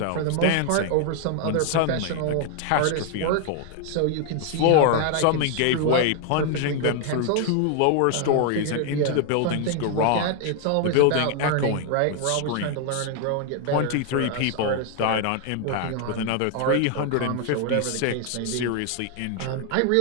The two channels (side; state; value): both; different; correlation 0.00